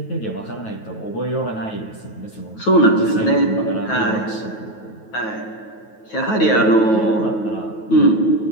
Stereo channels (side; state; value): right; late; 9.3 ms